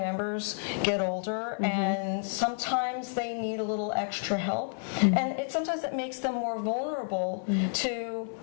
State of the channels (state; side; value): silent; right; 58 dB below the other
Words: get older, and sometimes they need a little extra help. And sometimes it makes them more vulnerable to